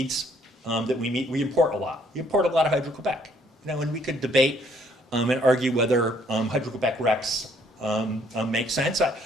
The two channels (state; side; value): normal; both; correlation 0.64